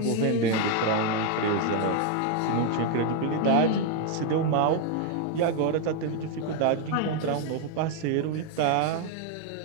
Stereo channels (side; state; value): both; different; correlation 0.01